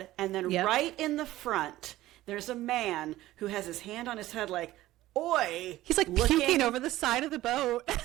and then Yep. right in the front, there's a man who has his hand on his head, like, "Oi!" He's like looking puking over the side of the boat.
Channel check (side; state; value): left; quieter; 15.8 dB